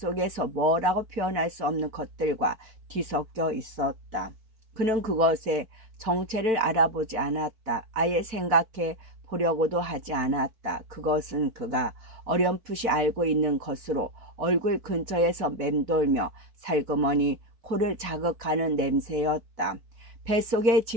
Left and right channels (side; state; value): left; late; 4.5 ms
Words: 뭐라고 표현할 수 없는 것들과 뒤섞여 있었다. 그는 그것의 정체를 알아보지 않았다. 아예 생각해 보려고도 하지 않았다. 그것은 그가 어렴풋이 알고 있는 것으로 얼굴 근처에서 맴돌며 살그머니 코를 자극하는 냄새였다. 뱃속에